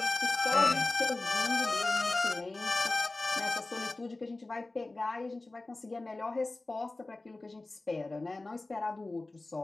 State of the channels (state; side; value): quieter; right; 3.1 dB